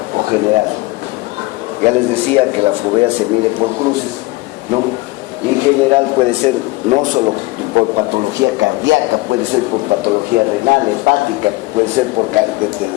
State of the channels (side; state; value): right; quieter; 21.3 dB